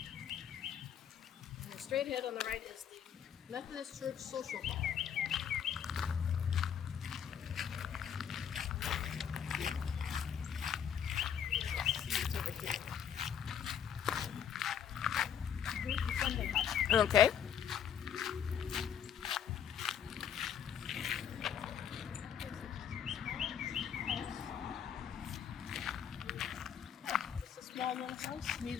And straight ahead on the right is the Methodist Church Social Hall. Okay. It's a small little house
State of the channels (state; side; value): quieter; right; 8.5 dB